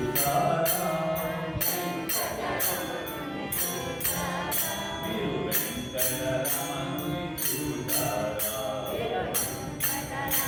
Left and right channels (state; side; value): identical; both; correlation 1.00